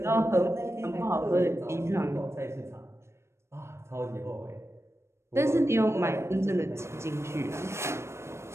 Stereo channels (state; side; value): late; left; 0.13 ms